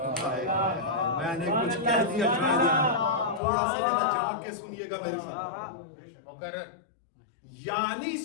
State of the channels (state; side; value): drops out; right; at 3.4 s